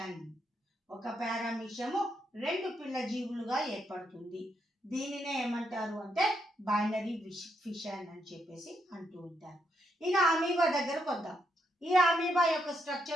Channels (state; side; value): normal; both; correlation 0.79